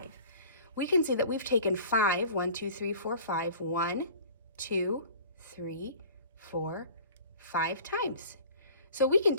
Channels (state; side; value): inverted; both; correlation -0.45